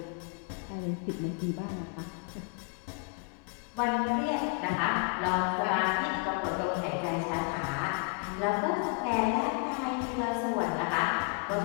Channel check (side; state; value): right; quieter; 34.3 dB